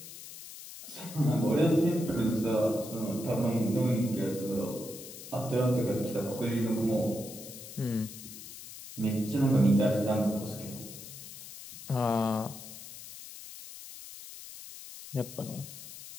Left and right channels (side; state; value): left; noise; hiss, 13 dB below the sound